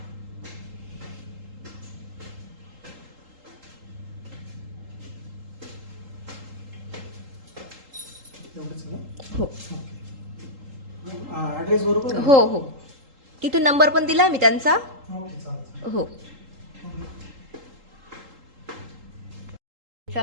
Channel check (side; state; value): left; late; 3.8 ms